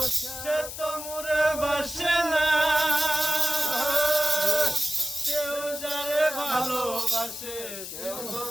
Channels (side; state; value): left; noise; hiss, 9 dB below the sound